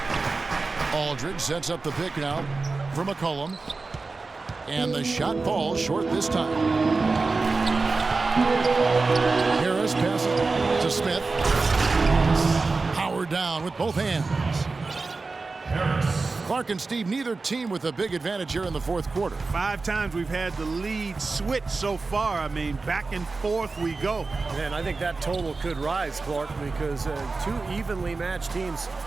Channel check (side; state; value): left; quieter; 3.9 dB